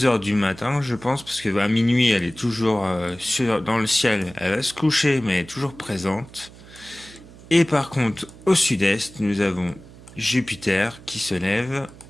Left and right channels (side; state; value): right; noise; hum, 20 dB below the sound